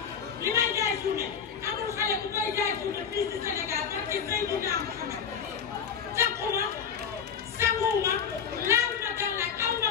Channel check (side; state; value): right; quieter; 7.2 dB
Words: li may jaay journée amul xale bu koy jaay journée fii ci Sénégal parce que Seydina Mouhamed takkuma sanguwuma laaluma gàllaaj aw ma